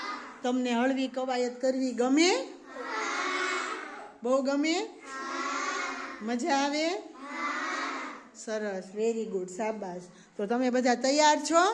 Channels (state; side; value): identical; both; correlation 1.00